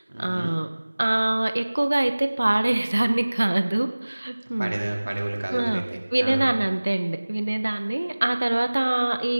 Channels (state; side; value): inverted; both; correlation -1.00